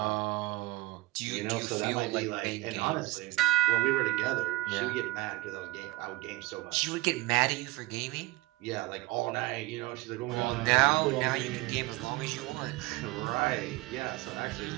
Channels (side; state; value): left; quieter; 20.0 dB